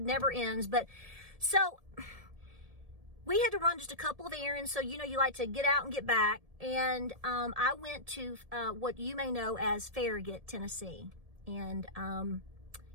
ends. But so we had to run just a couple of errands. So, you know, you like to get out and get back. And I went to what you may know as Farragut, Tennessee. And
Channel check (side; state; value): left; late; 1.7 ms